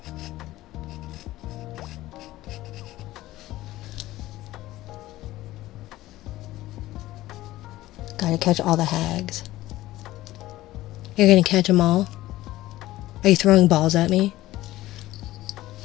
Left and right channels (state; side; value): quieter; right; 16.3 dB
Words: Gotta catch all the hags. You're gonna catch them all? Are you throwing balls at me?